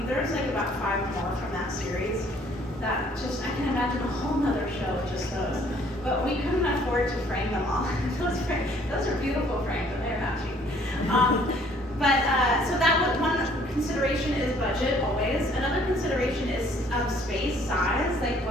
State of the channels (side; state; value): both; normal; correlation 0.60